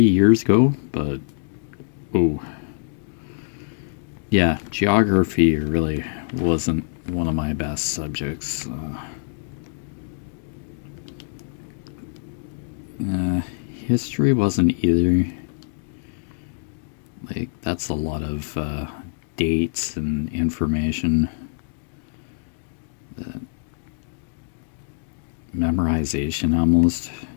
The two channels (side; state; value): right; silent; digital silence